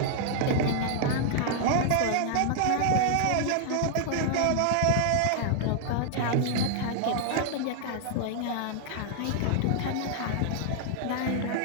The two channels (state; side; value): different; both; correlation 0.00